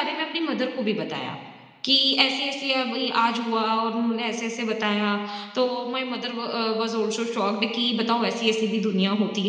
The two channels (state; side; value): identical; both; correlation 1.00